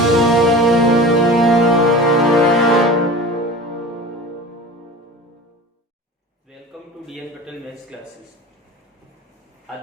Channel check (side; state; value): both; normal; correlation 0.36